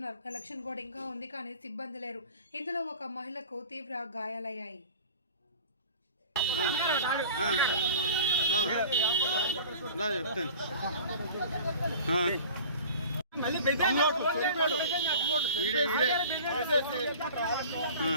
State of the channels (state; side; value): inverted; both; correlation -0.41